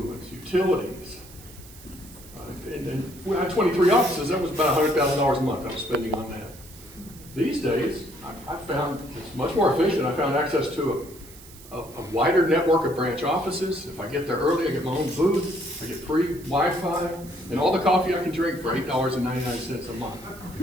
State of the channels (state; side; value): noise; right; hiss, 20 dB below the sound